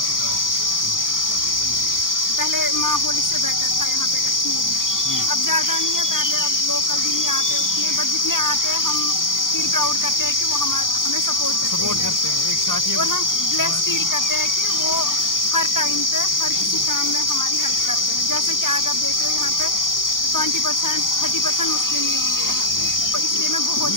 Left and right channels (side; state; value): right; late; 0.90 ms